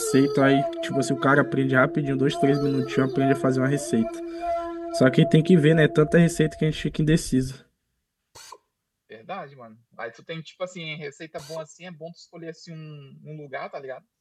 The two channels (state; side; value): identical; both; correlation 1.00